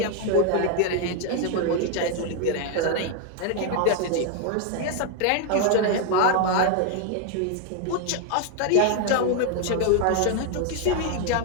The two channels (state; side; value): different; both; correlation 0.00